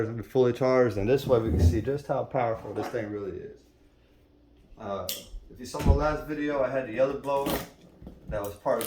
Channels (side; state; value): both; identical; correlation 1.00